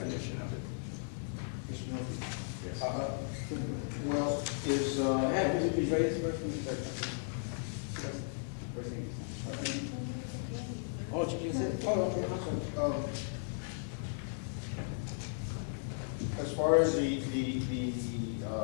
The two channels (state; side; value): silent; right; digital silence